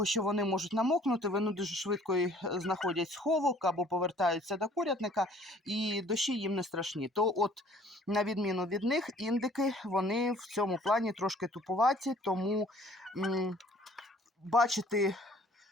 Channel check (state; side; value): normal; both; correlation 0.55